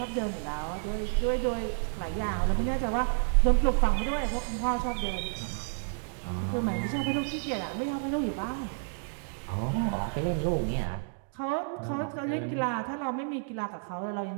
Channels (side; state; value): left; silent; digital silence